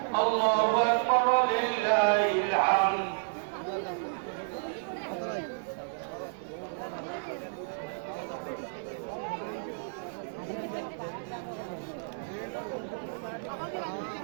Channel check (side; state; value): left; silent; digital silence